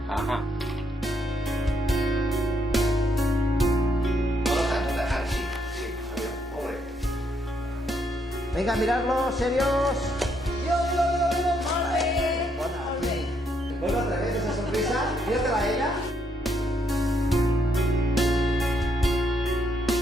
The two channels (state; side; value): normal; both; correlation 0.74